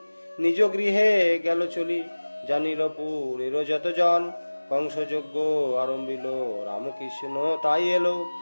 নিজ গৃহে গেল চলি, জানিল পুরের যত জন কংস যজ্ঞ আরম্ভিল। রামকৃষ্ণ তাই এলো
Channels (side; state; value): both; inverted; correlation -1.00